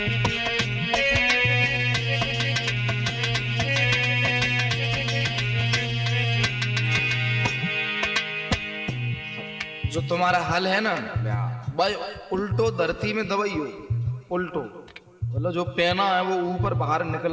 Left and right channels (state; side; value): identical; both; correlation 1.00